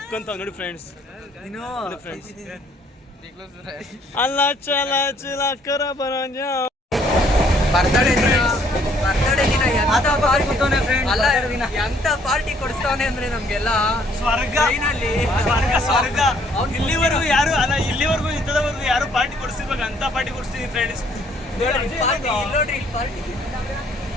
ನೋಡಿ ಫ್ರೆಂಡ್ಸ್, ನೋಡಿ ಫ್ರೆಂಡ್ಸ್, ಅಲ್ಲ ಚಲ ಚಿಲ ಕರ ಬರಂಜ ಬರ್ತಡೇ ದಿನ ಎಂತ ಪಾರ್ಟಿ ಕೊಡಿಸ್ತಾವನೆ ಅಂದ್ರೆ ನಮ್ಗೆಲ್ಲ ಸ್ವರ್ಗ ಸ್ವರ್ಗ. ಇಲ್ಲಿವರೆಗೂ ಯಾರು ಅಲ್ಲ, ಇಲ್ಲಿವರೆಗೂ ಇಂಥದವರೆಗೂ ಯಾರು ಪಾರ್ಟಿ ಕೊಡಿಸಿರ್ಬೇಕು ಅಂತ ಪಾರ್ಟಿ ಕೊಡಿಸ್ತೀನಿ ಫ್ರೆಂಡ್ಸ್.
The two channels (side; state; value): both; normal; correlation 0.64